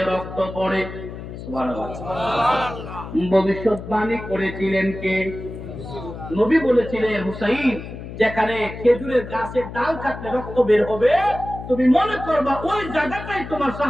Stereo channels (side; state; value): left; noise; hum, 11 dB below the sound